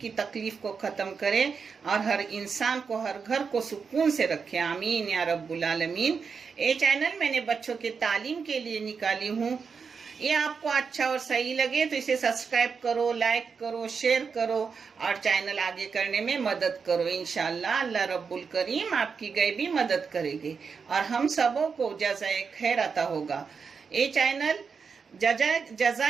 तकलीफ को ख़त्म करे और हर इंसान को, हर घर को सुकून से रखे। आमीन या रब्बुल आलमीन। ये चैनल मैंने बच्चों के तालीम के लिए निकाली हूँ। ये आपको अच्छा और सही लगे तो इसे सब्सक्राइब करो, लाइक करो, शेयर करो और चैनल आगे करने में मदद करो। इंशाअल्लाह अल्लाह रब्बुल करीम आपकी गैबी मदद करेगी और हम सबों को जज़ाए खैर अता होगा। ये चैनल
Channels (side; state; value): left; quieter; 5.6 dB